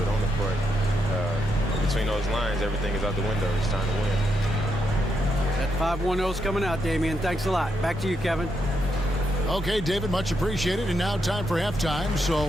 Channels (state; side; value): normal; both; correlation 0.80